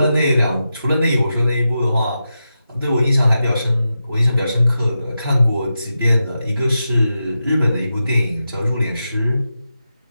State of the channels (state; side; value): inverted; both; correlation -0.89